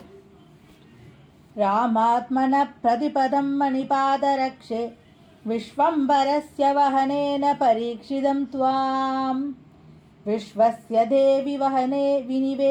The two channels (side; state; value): both; identical; correlation 1.00